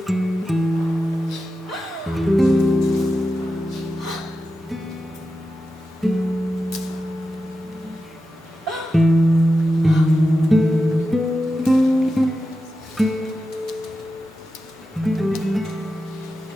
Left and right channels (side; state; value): both; normal; correlation 0.91